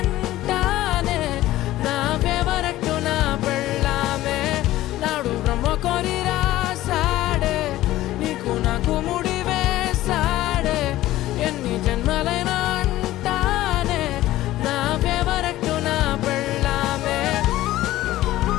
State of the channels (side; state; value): right; quieter; 15.6 dB